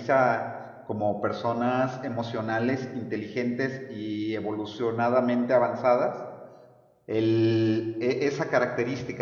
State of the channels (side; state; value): both; identical; correlation 1.00